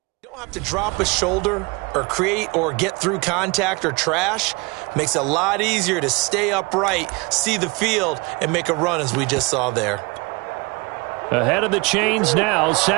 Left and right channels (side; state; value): left; quieter; 27.2 dB